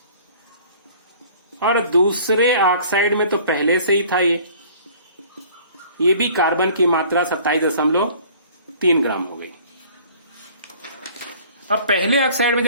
और दूसरे ऑक्साइड में तो पहले से ही था ये भी कार्बन की मात्रा 27.3 ग्राम हो गई। अब पहले ऑक्साइड में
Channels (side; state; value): both; inverted; correlation -0.51